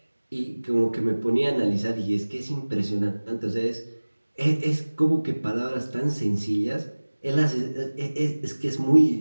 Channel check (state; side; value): inverted; both; correlation -1.00